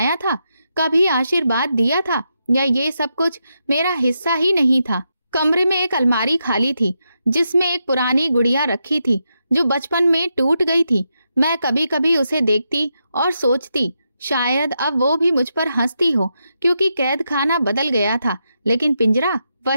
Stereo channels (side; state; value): both; inverted; correlation -0.84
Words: था, कभी आशीर्वाद दिया था, या ये सब कुछ मेरा हिस्सा ही नहीं था? कमरे में एक अलमारी खाली थी जिसमें एक पुरानी गुड़िया रखी थी जो बचपन में टूट गई थी। मैं कभी कभी उसे देखती और सोचती शायद अब वो भी मुझ पर हंसती हो, क्योंकि कैद खाना बदल गया था लेकिन पिंजरा